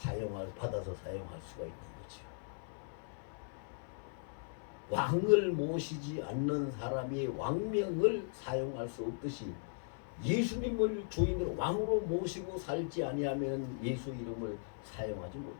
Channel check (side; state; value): right; silent; 53 dB below the other